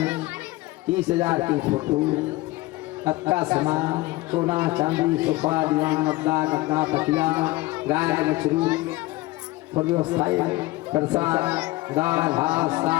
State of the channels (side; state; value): right; quieter; 19.5 dB